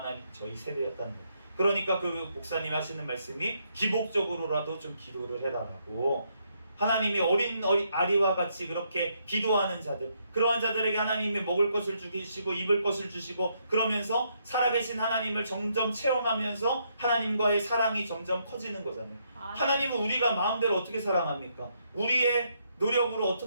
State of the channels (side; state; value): both; inverted; correlation -0.75